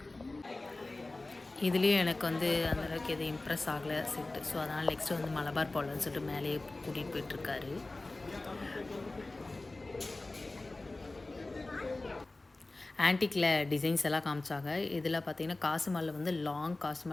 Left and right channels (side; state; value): right; quieter; 3.0 dB